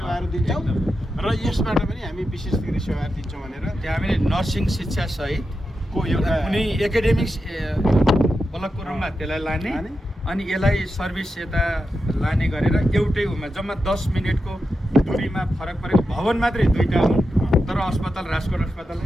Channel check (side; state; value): both; normal; correlation 0.89